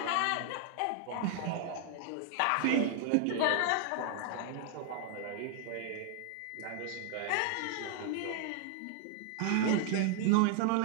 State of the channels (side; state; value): both; different; correlation 0.00